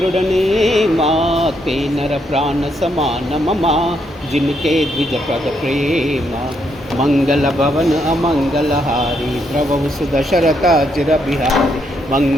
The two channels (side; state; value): both; normal; correlation 0.76